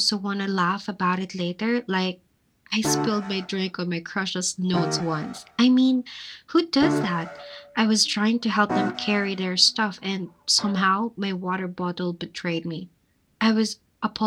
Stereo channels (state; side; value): identical; both; correlation 1.00